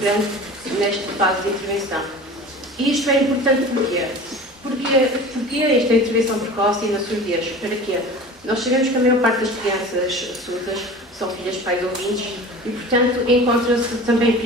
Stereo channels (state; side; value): normal; both; correlation 0.38